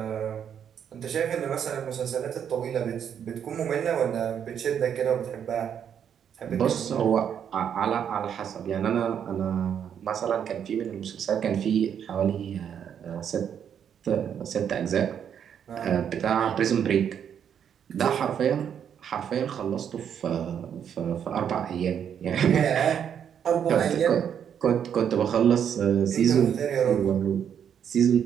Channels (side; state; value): left; quieter; 8.5 dB